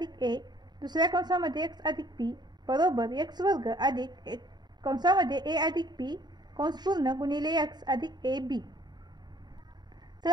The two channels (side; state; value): left; late; 0.20 ms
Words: a, दुसऱ्या कंसामध्ये x अधिक p बरोबर x वर्ग अधिक कंसामध्ये a अधिक p कंस पूर्ण गुणिले x अधिक ab.